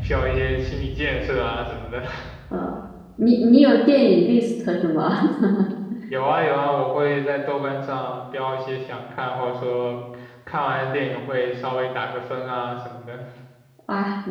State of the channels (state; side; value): identical; both; correlation 1.00